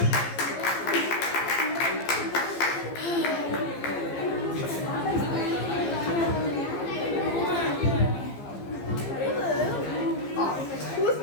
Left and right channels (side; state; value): right; late; 15 ms